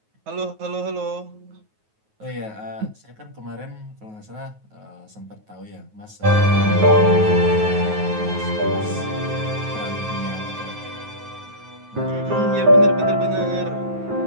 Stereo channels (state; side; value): late; left; 9.3 ms